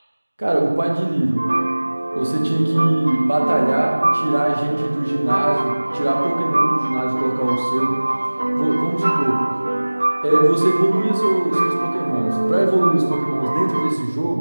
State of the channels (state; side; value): inverted; both; correlation -1.00